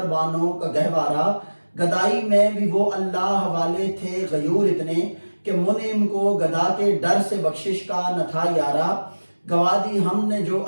بانوں کا گہوارہ، گدائی میں بھی وہ اللہ حوالے تھے غیور اتنے، کہ منعم کو گدا کے ڈر سے بخشش کا نہ تھا یارا، گوادی ہم نے جو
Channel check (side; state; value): both; inverted; correlation -1.00